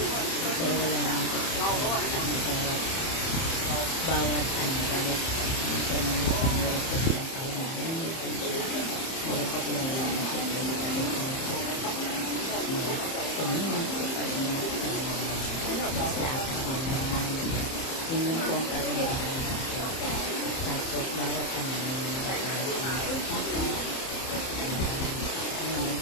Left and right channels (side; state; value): right; late; 30 ms